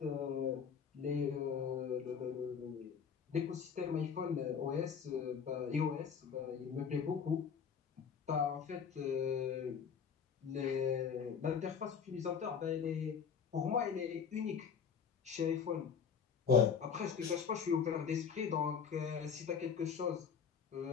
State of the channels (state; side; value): quieter; right; 6.7 dB